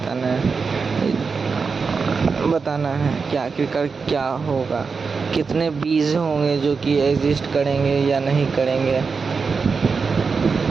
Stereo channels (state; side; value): quieter; left; 5.0 dB